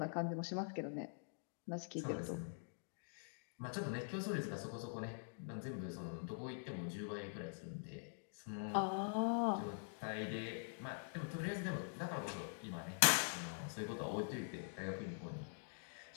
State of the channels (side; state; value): right; silent; digital silence